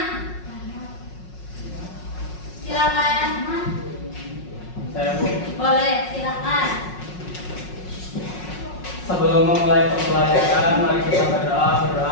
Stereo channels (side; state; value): right; late; 5.5 ms